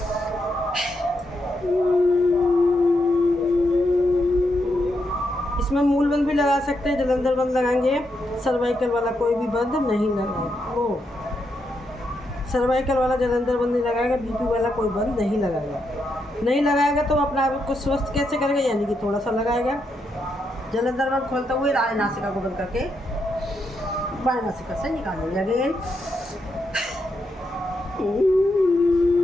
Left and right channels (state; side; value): normal; both; correlation 0.82